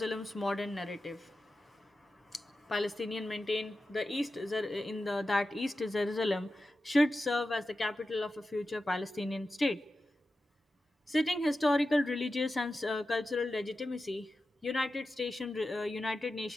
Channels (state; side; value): normal; both; correlation 0.92